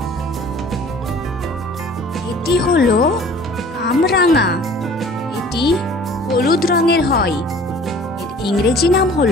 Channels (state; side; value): normal; both; correlation 0.49